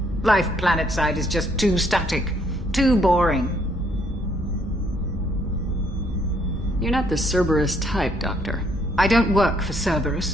Life planetside is just too static, too boring. You're not the Cerberus type, Doctor. I don't work for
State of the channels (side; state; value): both; normal; correlation 0.69